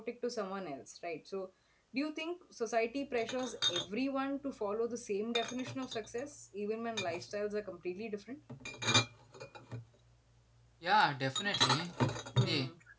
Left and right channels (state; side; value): identical; both; correlation 1.00